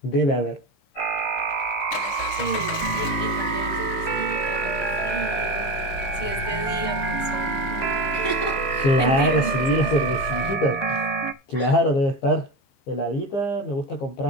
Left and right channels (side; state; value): right; late; 16 ms